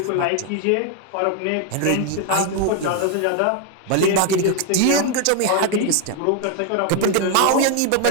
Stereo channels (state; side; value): different; both; correlation 0.01